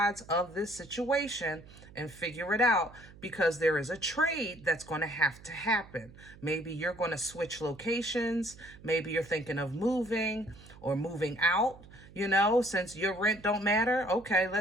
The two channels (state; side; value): noise; right; hum, 20 dB below the sound